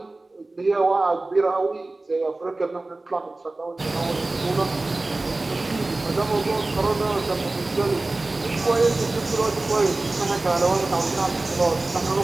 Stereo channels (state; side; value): quieter; left; 3.1 dB